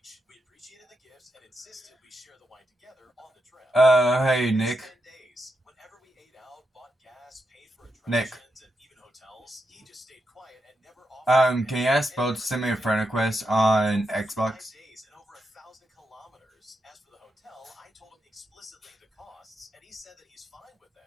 We appreciated the gifts and insisted we share the wine together on the trip. Hey Nick. 10 days. Whenever we ate out, bought gas, paid for Nick. attractions, and even hotels, he just stayed quiet and never offered. Can you ask Bo to send me a friend request on Xbox? 5 days and over 1,000 kilometers. As for the hotel, I told him explicitly the costs, and he said that he's fine with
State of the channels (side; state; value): both; normal; correlation 0.84